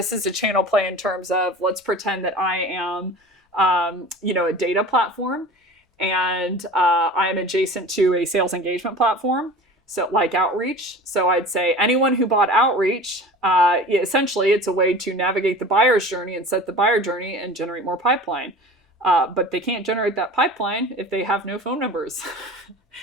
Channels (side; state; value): both; normal; correlation 0.38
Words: is a channel play in terms of, let's pretend that I am, a data platform, and I'm adjacent to a sales engagement platform. So like Outreach. So I'd say anyone who bought Outreach, essentially it's a way to navigate the buyer's journey and set the buyer journey and generate more pipeline. But they can't generate that pipeline if they have no phone numbers